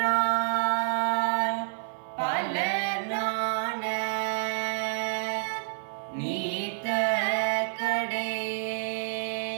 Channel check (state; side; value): silent; left; 59 dB below the other